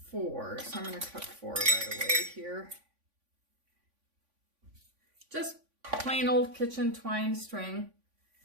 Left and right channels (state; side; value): late; left; 3.5 ms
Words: So I'm going to cut 4 right away here. Just plain old kitchen twine string.